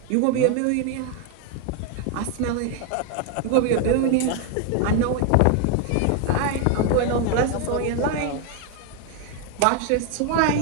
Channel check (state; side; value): different; both; correlation 0.01